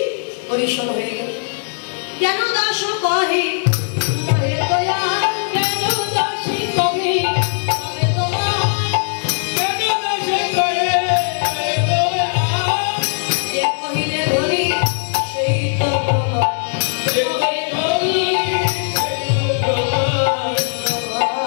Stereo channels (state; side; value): silent; right; digital silence